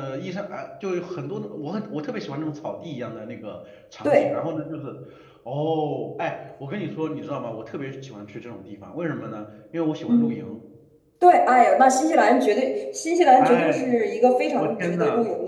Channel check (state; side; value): identical; both; correlation 1.00